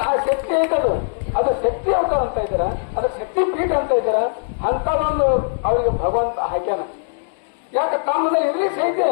ಆ ಶಕ್ತಿ ಐತದು, ಅದು ಶಕ್ತಿ ಅವತಾರ ಅಂತ ಇದ್ದಾರ, ಅದು ಶಕ್ತಿ ಪೀಠ ಅಂತ ಇದ್ದಾರ. ಅಂತ ಒಂದು ಅವರಿಗೆ ಭಗವಂತ ಹಾಕ್ಯಾನ. ಯಾಕೆ ತಮ್ಮದಲ್ಲಿ ಇರ್ಲಿ ಸಹಿತ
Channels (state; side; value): silent; right; digital silence